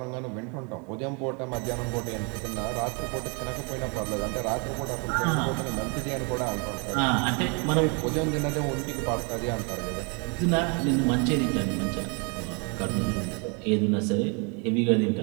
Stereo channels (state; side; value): quieter; left; 33.8 dB